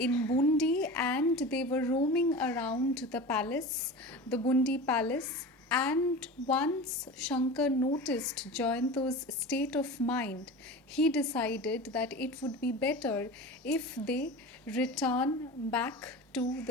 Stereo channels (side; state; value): both; normal; correlation 0.32